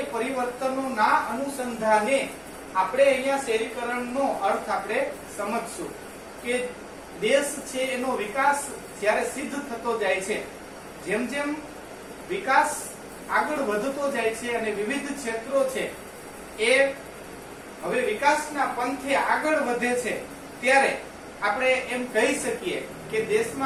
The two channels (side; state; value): both; identical; correlation 1.00